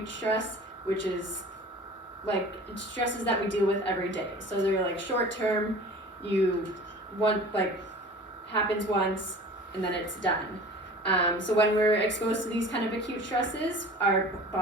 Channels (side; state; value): both; normal; correlation 0.41